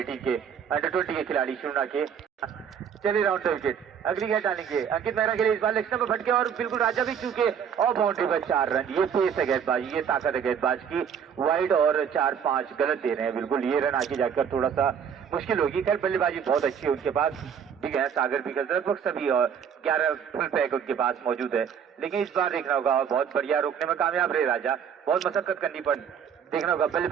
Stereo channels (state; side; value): quieter; left; 7.7 dB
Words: के अंडर 20 के खिलाड़ी शुना के। चलिए राउंड विकेट, अगली गेंद डालेंगे अंकित मेहरा के लिए। इस बार लेग स्टंप पर भटके और बिल्कुल राजा भी चूके और बाउंड्री पर 4 रन। ये पेस है गेंदबाजी, ये ताकत है गेंदबाज की। वाइड और 4-5 गलत दे रहे हैं, बिल्कुल ये रन आगे जाकर थोड़ा सा मुश्किल होगी। खैर बल्लेबाजी बहुत अच्छी है उनके पास, भी है सागर भी लगभग सभी और 11 फुल पैक उनके पास मौजूद है। लेकिन इस बार देखना होगा, बहुत बढ़िया रोकने में कामयाब रहे राजा, बहुत मशक्कत करनी पड़ी। देखना होगा